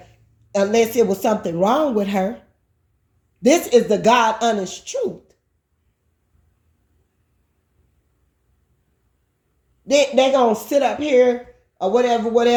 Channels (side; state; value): both; identical; correlation 1.00